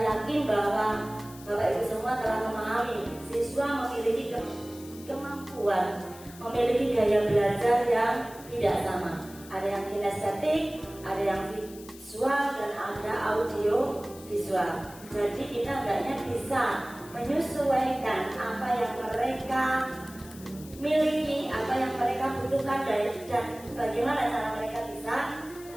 yakin bahwa Bapak Ibu semua telah memahami siswa memiliki kemampuan, memiliki gaya belajar yang tidak sama. Ada yang kinestetik, ada yang visual, dan ada audio visual. Jadi kita hendaknya bisa menyesuaikan apa yang mereka miliki, apa yang mereka butuhkan, dan bagaimana cara mereka bisa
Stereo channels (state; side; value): noise; left; hiss, 19 dB below the sound